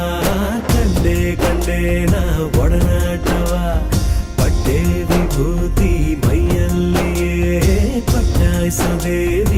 ಕಂಡೆ ಕಂಡೇನ ಒಡನಾಟವ ಪಟ್ಟೆ ವಿಭೂತಿ ಮೈಯಲ್ಲಿಯೇ ಪಟ್ಟಾಯಿಸೋ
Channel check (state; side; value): identical; both; correlation 1.00